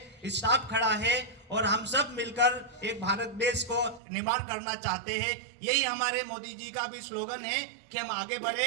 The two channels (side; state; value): left; drops out; at 4.0 s